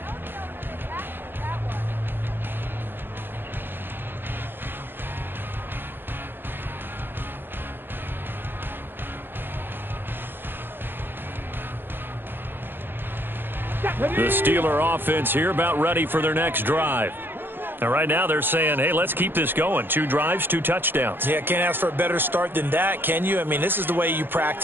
The Steeler offense here about ready for their next drive. Now, right now they're saying, hey, let's keep this going. 2 drives, 2 touchdowns. Yeah, can't ask for a better start than that, can you? I mean, this is the way you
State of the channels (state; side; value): late; left; 0.098 ms